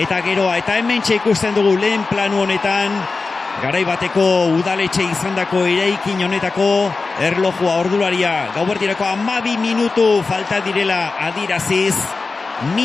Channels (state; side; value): quieter; right; 4.0 dB